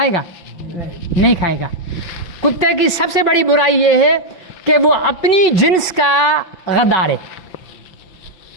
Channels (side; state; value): right; late; 5.9 ms